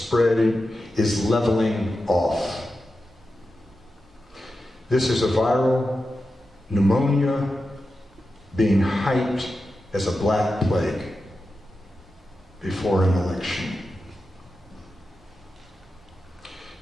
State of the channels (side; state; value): both; normal; correlation 0.91